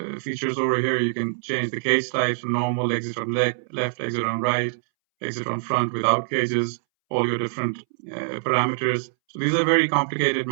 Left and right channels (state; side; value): silent; left; 63 dB below the other